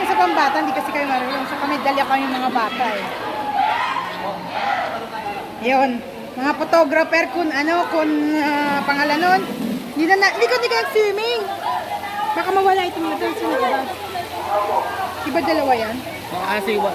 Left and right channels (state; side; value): identical; both; correlation 1.00